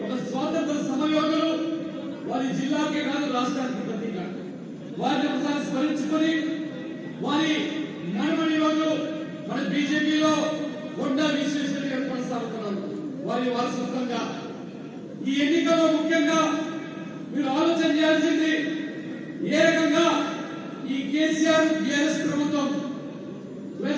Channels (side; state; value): both; identical; correlation 1.00